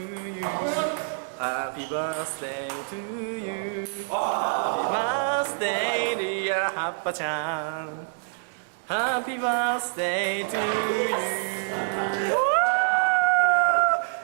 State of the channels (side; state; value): left; silent; digital silence